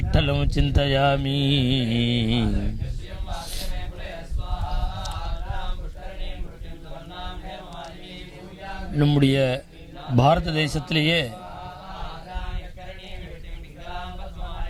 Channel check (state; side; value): identical; both; correlation 1.00